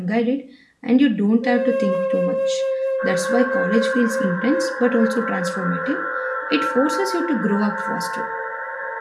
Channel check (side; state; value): both; identical; correlation 1.00